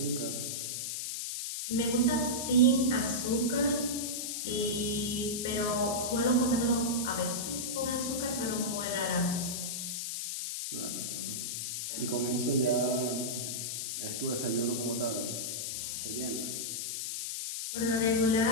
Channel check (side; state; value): left; noise; hiss, 3 dB below the sound